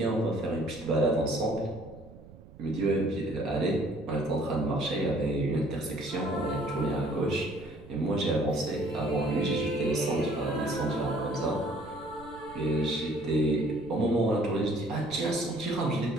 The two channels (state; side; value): noise; right; rumble, 20 dB below the sound